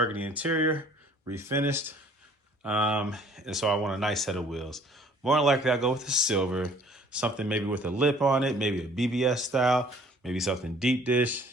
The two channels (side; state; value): both; normal; correlation 0.55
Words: interior, refinished. And so I want a nice set of wheels. More than likely, I'll go with the silver, something maybe with a lip on it, maybe a BBS style, maybe something deep dish.